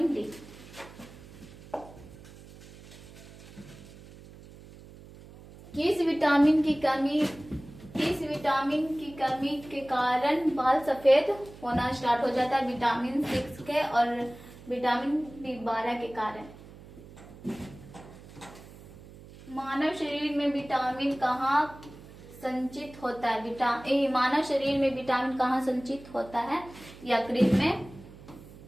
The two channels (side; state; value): right; noise; hum, 19 dB below the sound